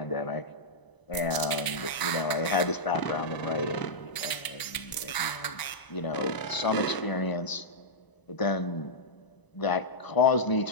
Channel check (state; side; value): late; right; 1.0 ms